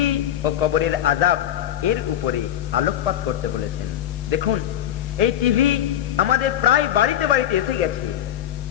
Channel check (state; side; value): quieter; right; 11.4 dB